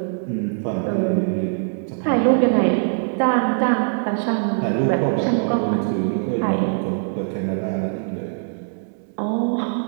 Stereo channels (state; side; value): silent; left; 64 dB below the other